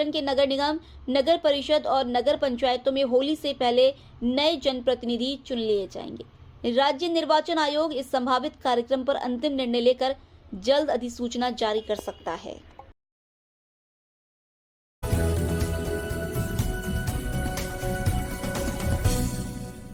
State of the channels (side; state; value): both; identical; correlation 1.00